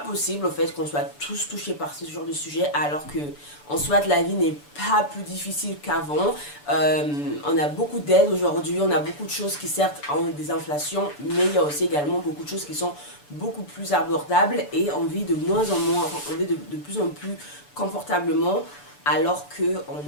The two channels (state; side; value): late; right; 6.9 ms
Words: au fait qu'on soit tous touchés par ce genre de sujet, alors que en soit la vie n'est pas plus difficile qu'avant. On a beaucoup d'aides aujourd'hui, on a beaucoup de choses qui certes ont des inflations, mais il y a aussi également beaucoup de choses qui sont beaucoup plus abordables et on vit de moins en moins, on vit de plus en plus confortablement, alors